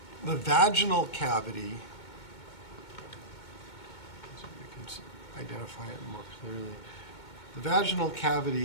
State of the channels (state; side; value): late; right; 2.2 ms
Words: The vaginal cavity, so we can identify it more clearly. The vaginal